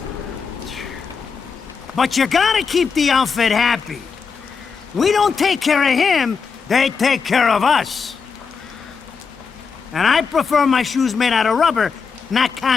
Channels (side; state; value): right; quieter; 5.5 dB